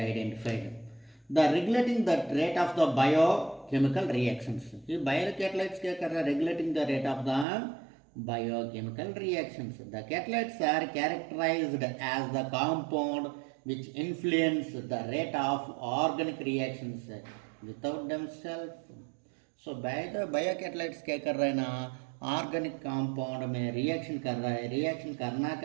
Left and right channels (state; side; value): drops out; left; at 7.5 s